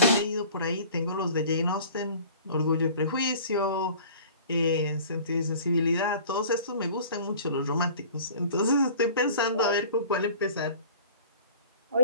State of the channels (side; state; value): both; inverted; correlation -0.45